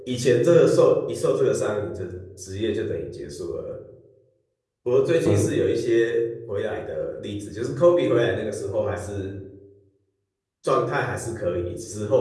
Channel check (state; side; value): identical; both; correlation 1.00